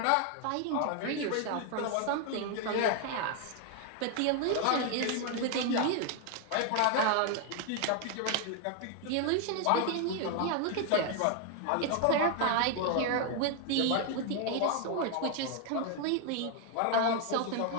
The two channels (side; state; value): both; different; correlation 0.00